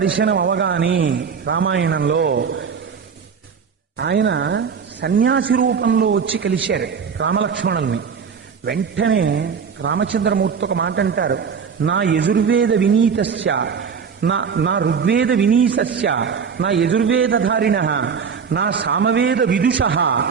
అవగానే రామాయణంలో ఆయన సన్యాసి రూపంలో వచ్చి కలిశారు రామలక్ష్మణుల్ని. వెంటనే రామచంద్రమూర్తి ఒక మాట అంటారు, నా యజుర్వేద వినీతస్య నా ఋగ్వేద వినీసస్య నా యజుర్వేదధారిణ నా సామవేద విదుష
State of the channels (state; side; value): quieter; left; 6.3 dB